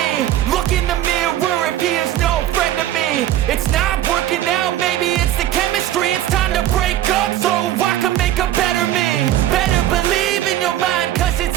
Look in the mirror if he is no friend to me. It's not working out, maybe it's the chemistry. It's time to break up so I can make a better me. Better believe in your mind, cause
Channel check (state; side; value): quieter; left; 12.9 dB